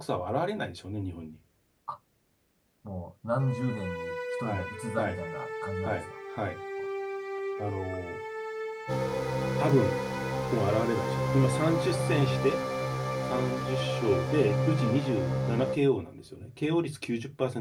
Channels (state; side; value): identical; both; correlation 1.00